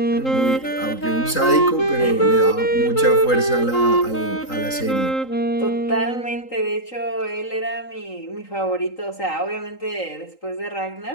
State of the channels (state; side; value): late; right; 3.8 ms